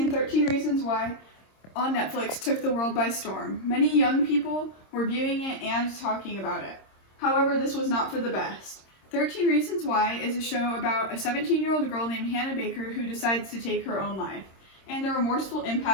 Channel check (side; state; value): right; late; 26 ms